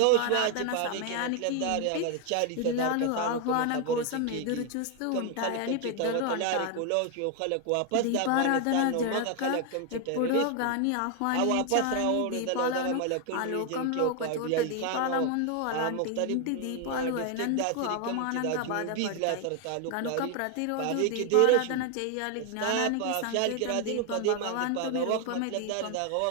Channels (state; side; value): different; both; correlation 0.00